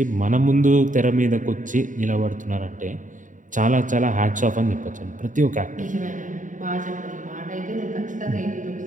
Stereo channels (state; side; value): late; left; 0.37 ms